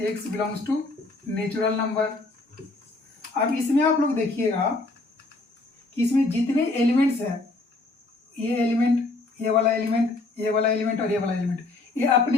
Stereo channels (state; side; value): quieter; right; 3.2 dB